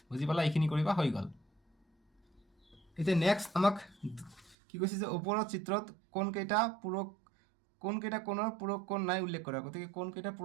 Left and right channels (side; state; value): left; drops out; at 4.5 s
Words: বুজি পালা? এইখিনি কৰিবা, হৈ গ'ল। এতিয়া নেক্সট আমাক কি কৈছে যে ওপৰৰ চিত্ৰত কোনকেইটা কোণৰ পূৰক কোণ নাই উল্লেখ কৰা। গতিকে কোনকেইটা